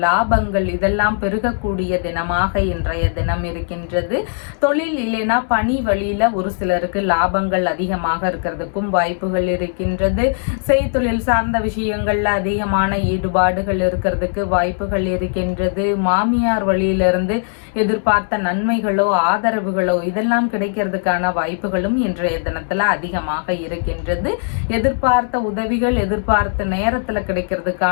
லாபங்கள் இதெல்லாம் பெருகக்கூடிய தினமாக இன்றைய தினம் இருக்கின்றது. தொழில் இல்லைனா பணி வழியில ஒரு சிலருக்கு லாபங்கள் அதிகமாக இருக்கிறதுக்கும் வாய்ப்புகள் இருக்கின்றது. செய்தொழில் சார்ந்த விஷயங்கள்ல அதிகமான ஈடுபாடுகள் இருக்கிறதுக்கு வாய்ப்புகள் இருக்கின்றது. மாமியார் வழியிலிருந்து எதிர்பார்த்த நன்மைகளோ ஆதரவுகளோ இதெல்லாம் கிடைக்கிறதுக்கான வாய்ப்புகளும் இன்றைய தினத்துல அதிகமாக இருக்கின்றது. எதிர்பார்த்த உதவிகள் எதிர்பார்த்த நேரத்துல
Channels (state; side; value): silent; right; digital silence